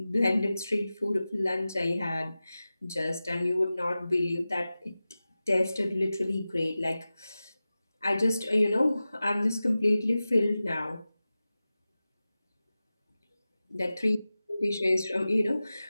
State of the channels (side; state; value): both; inverted; correlation -0.95